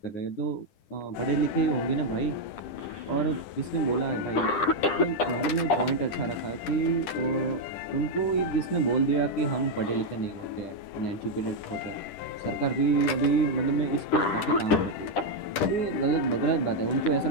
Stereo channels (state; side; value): late; right; 10 ms